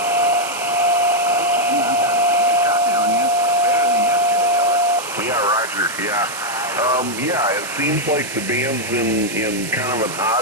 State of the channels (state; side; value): noise; right; hiss, 10 dB below the sound